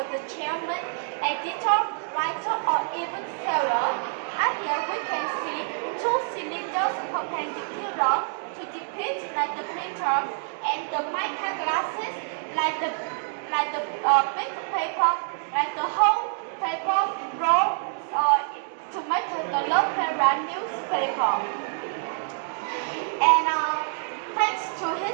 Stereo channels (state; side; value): silent; left; digital silence